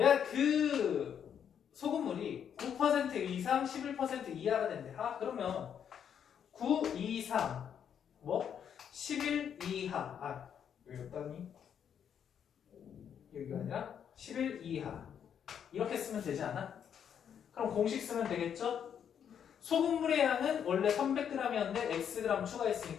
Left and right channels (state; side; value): quieter; right; 8.4 dB